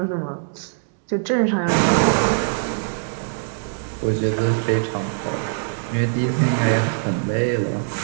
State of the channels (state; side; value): silent; left; digital silence